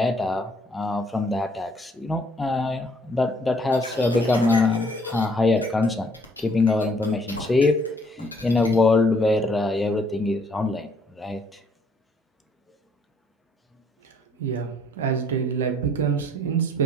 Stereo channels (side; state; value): both; normal; correlation 0.65